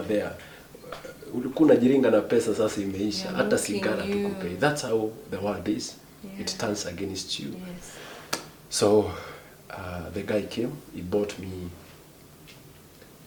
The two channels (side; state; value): both; identical; correlation 1.00